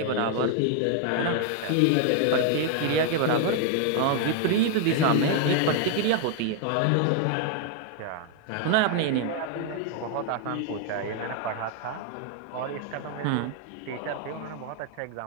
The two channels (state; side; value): different; both; correlation 0.00